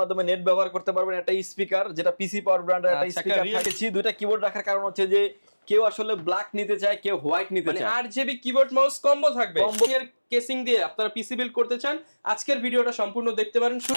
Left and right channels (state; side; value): inverted; both; correlation -1.00